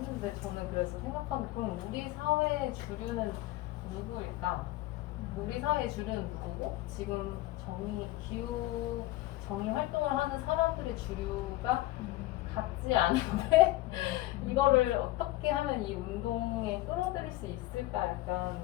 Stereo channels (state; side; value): quieter; right; 17.3 dB